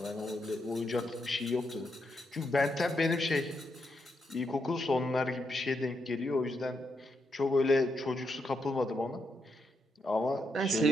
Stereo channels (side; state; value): both; normal; correlation 0.81